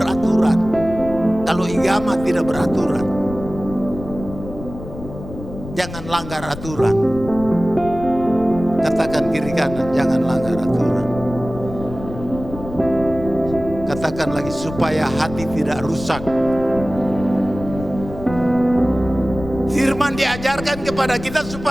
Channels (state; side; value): noise; left; rumble, 12 dB below the sound